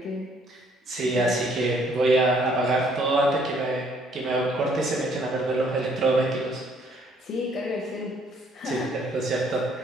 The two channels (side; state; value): both; normal; correlation 0.64